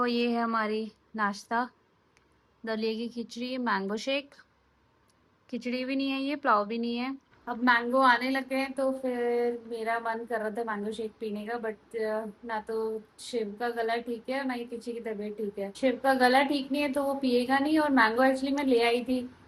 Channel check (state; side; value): identical; both; correlation 1.00